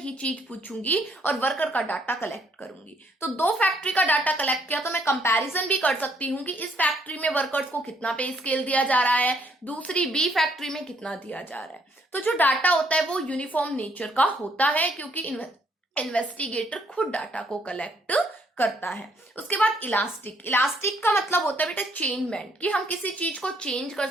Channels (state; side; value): normal; both; correlation 0.69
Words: चीज पूछूंगी और वर्कर का डाटा कलेक्ट करूंगी। तो दो फैक्ट्री का डाटा कलेक्ट किया तो मैं कंपैरिजन भी कर सकती हूँ कि इस फैक्ट्री में वर्कर्स को कितना पे स्केल दिया जा रहा है, दूसरी बी फैक्ट्री में कितना दिया जा रहा है। तो जो डाटा होता है वो यूनिफॉर्म नेचर का होता है क्योंकि इन्वेस्टिगेटर खुद डाटा को कलेक्ट करता है। उसके बाद इलास्टिक, इलास्टिक का मतलब होता है बेटा चेंजमेंट, कि हम किसी चीज को चेंज कर